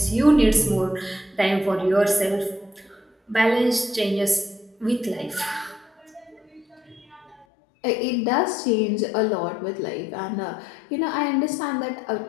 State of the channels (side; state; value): right; drops out; at 7.5 s